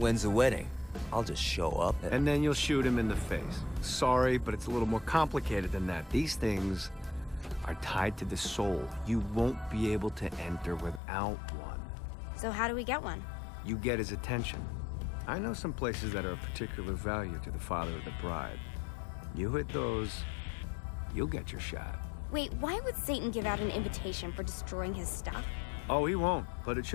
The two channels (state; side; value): drops out; right; at 11.0 s